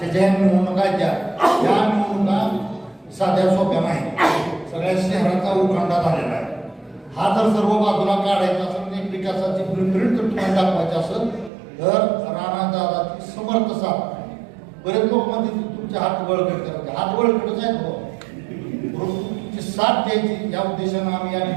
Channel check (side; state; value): left; drops out; at 11.5 s